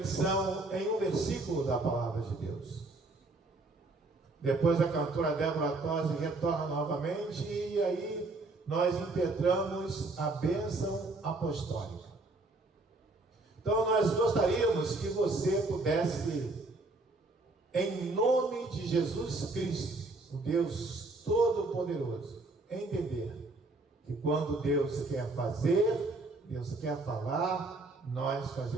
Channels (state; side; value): quieter; left; 3.1 dB